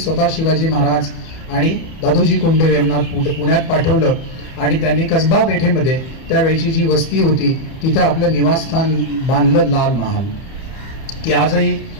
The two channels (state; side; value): late; right; 30 ms